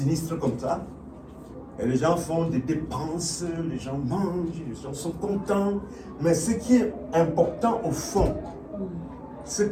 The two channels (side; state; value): both; identical; correlation 1.00